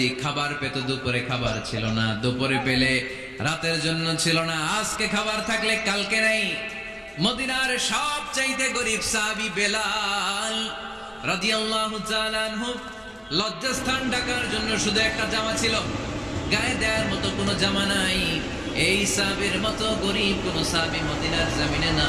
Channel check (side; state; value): both; identical; correlation 1.00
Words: খাবার পেত, দুপুরে খাবার ছিল না, দুপুরে পেলে রাতের জন্য ছিল না, আজকে খাবার থাকলে কালকে নেই। মদিনার সবচেয়ে গরীব সাহাবী বেলাল রাদিয়াল্লাহু তাআলা আনহু লজ্জাস্থান ঢাকার জন্য শুধু একটা জামা ছিল, গায়ে দেওয়ার মতো কোনো জামা নাই। এই সাহাবীর মতো গরীব কোনো সাহাবী মদিনার জমিনে